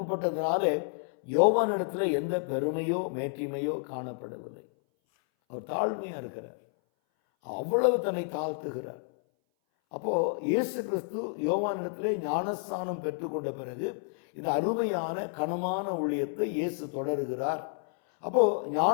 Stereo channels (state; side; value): silent; right; 58 dB below the other